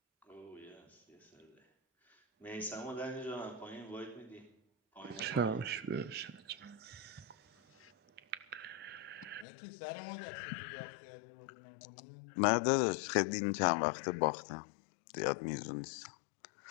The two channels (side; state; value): right; drops out; at 9.5 s